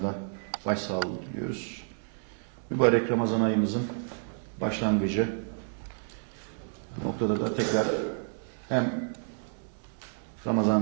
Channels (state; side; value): silent; left; 58 dB below the other